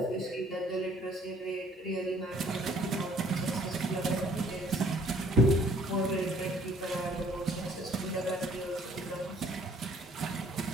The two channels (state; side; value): normal; both; correlation 0.59